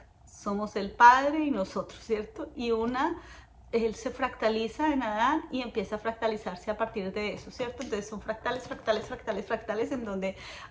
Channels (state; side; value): identical; both; correlation 1.00